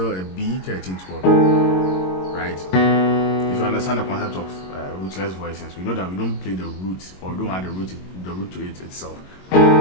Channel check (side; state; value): right; late; 22 ms